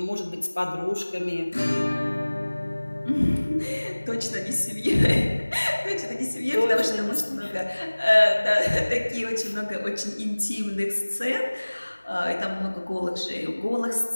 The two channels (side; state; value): both; inverted; correlation -1.00